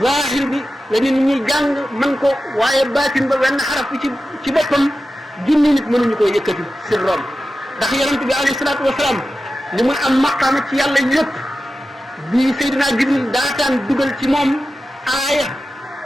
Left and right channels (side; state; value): both; normal; correlation 0.93